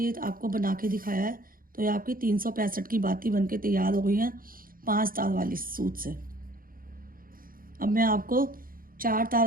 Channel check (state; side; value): late; left; 0.41 ms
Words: आपको बना के दिखाया है। तो ये आपकी 365 की बाती बन के तैयार हो गई है 5 तार वाली सूत से। अब मैं आपको 4